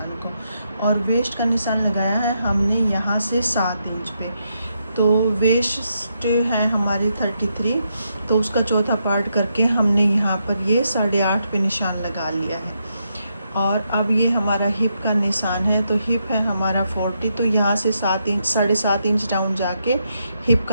को। और वेस्ट का निशान लगाया है हमने यहाँ से 7 इंच पे। तो वेस्ट है हमारी 33, तो उसका चौथा पार्ट करके हमने यहाँ पर ये 8.5 पे निशान लगा लिया है। और अब ये हमारा हिप का निशान है, तो हिप है हमारा 40, तो यहाँ से 7.5 इंच डाउन जाके हिप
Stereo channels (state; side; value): inverted; both; correlation -0.81